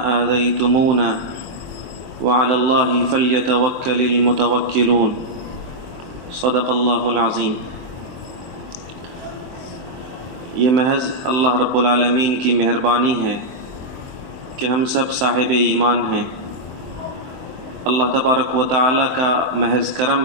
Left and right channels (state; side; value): late; left; 23 ms